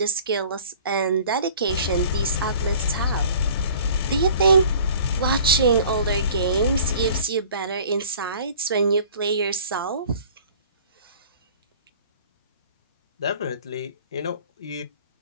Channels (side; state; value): both; inverted; correlation -0.48